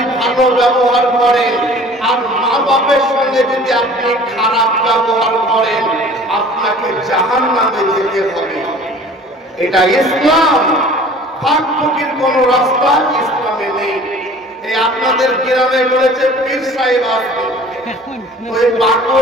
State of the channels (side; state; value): both; normal; correlation 0.47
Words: ভালো ব্যবহার করেন, আর মা বাপের সঙ্গে যদি আপনি খারাপ ব্যবহার করেন, আপনাকে জাহান্নামে যেতে হবে। এটা ইসলাম, ফাঁক ফকির কোন রাস্তা ইসলামে নেই। এই আপনাদের গ্রামে বলেছে পীর সাহেব আসবে, ওই